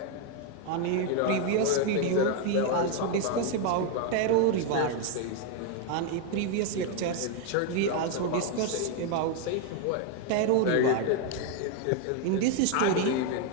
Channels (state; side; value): different; both; correlation 0.01